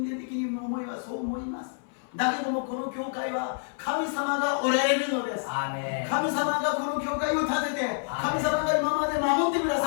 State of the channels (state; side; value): silent; right; 58 dB below the other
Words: 間的に思いはそう思います。だけどもこの教会は神様がおられるのです。 아멘. 神様がこの教会を建てて、アーメン神様が今まで守ってくだ